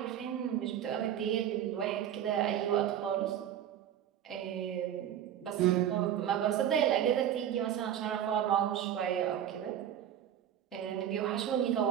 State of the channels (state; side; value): quieter; left; 10.3 dB